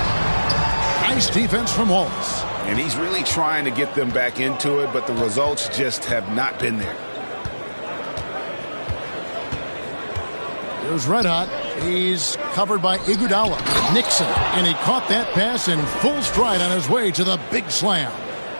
Nice defense from Wallace. And he's really trying to get them back into it, but the results just have not been there. Here's Red Hot. He's covered by Iguodala. Nixon. And he caught that pass in full stride on his way to the big slam.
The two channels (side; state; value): both; inverted; correlation -1.00